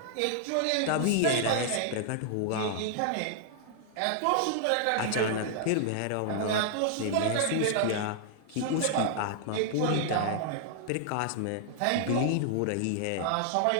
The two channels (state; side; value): different; both; correlation -0.01